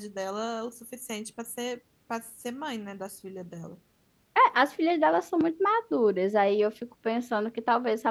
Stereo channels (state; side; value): identical; both; correlation 1.00